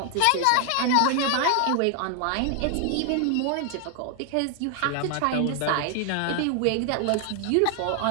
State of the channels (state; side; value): different; both; correlation 0.00